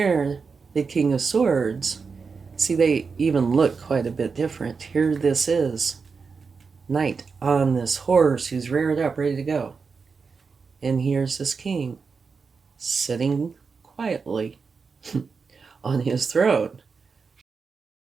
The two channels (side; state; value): left; quieter; 5.1 dB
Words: the King of Swords, see, they even look quite a bit different. Here this is, Knight on this horse who's reared up, ready to go. And here's this king, sitting quietly on his throne.